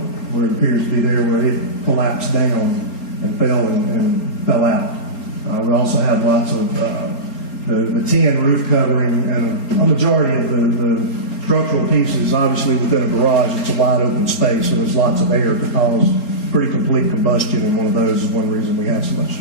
where it appears to be there where it collapsed down and fell out. We also have lots of the tin roof covering, and a majority of the structural pieces, obviously within a garage, it's a wide open space, so there's lots of air to cause pretty complete combustion, and one of those is one reason we have so much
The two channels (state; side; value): late; right; 4.0 ms